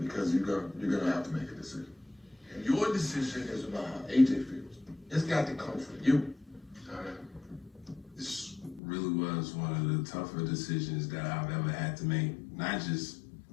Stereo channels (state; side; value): drops out; right; at 8.8 s